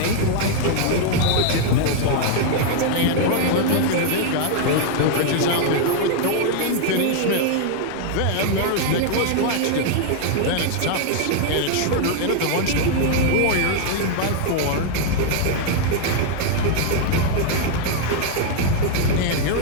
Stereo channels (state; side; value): different; both; correlation 0.00